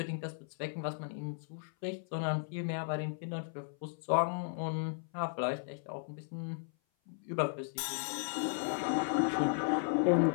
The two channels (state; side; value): silent; right; 54 dB below the other